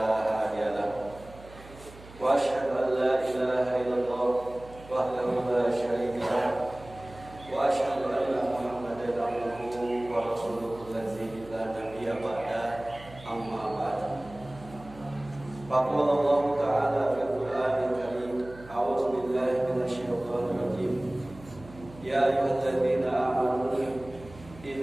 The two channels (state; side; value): noise; right; hum, 19 dB below the sound